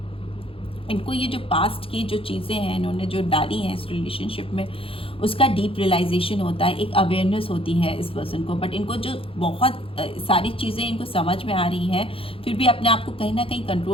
इनको ये जो पास्ट की जो चीज़ें हैं इन्होंने जो डाली हैं इस रिलेशनशिप में, उसका डीप रियलाइजेशन होता है, एक अवेयरनेस होती है इस पर्सन को। बट इनको जो बहुत सारी चीज़ें इनको समझ में आ रही हैं, फिर भी अपने आप को कहीं ना कहीं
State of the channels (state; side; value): late; right; 0.27 ms